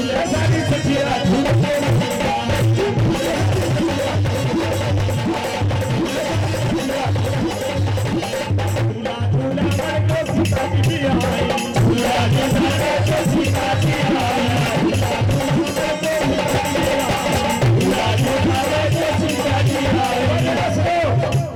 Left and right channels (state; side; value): identical; both; correlation 1.00